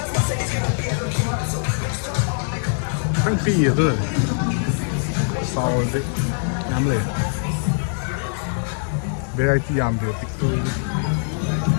Anh pì rồi, sao đấy, nhắm lên. Variety làm được tích tươi.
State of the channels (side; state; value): right; silent; 64 dB below the other